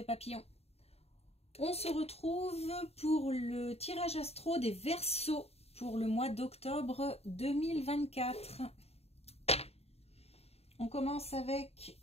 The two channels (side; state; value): right; late; 0.30 ms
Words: Papillon. On se retrouve pour le tirage astro des Verseaux pour le mois d'octobre 2024. On commence avec